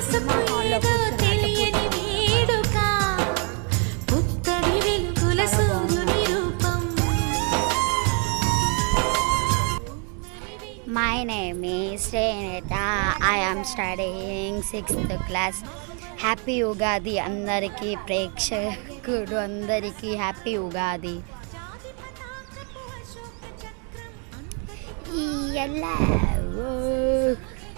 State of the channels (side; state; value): left; quieter; 38.0 dB